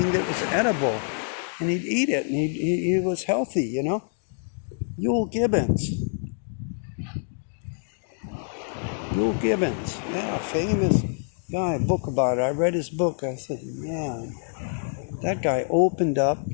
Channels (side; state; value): right; silent; 61 dB below the other